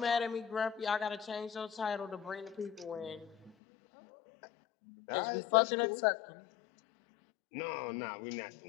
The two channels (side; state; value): right; drops out; at 3.5 s